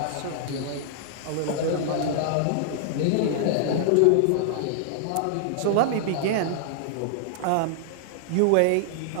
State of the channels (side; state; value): both; different; correlation -0.01